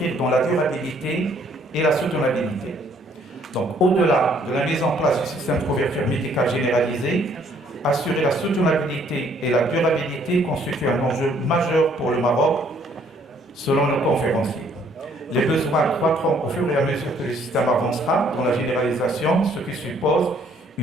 dans la durabilité et la soutenabilité. Donc, au-delà de la mise en place du système de couverture médicale généralisée, assurer la soutenabilité et la durabilité constitue un enjeu majeur pour le Maroc, selon nos conférenciers. Les besoins croîtront au fur et à mesure que le système avancera dans la généralisation, ce qui suppose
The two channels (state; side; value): normal; both; correlation 0.64